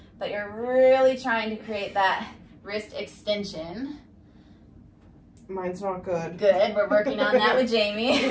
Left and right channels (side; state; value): both; identical; correlation 1.00